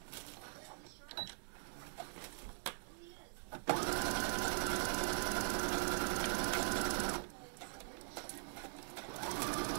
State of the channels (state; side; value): silent; left; digital silence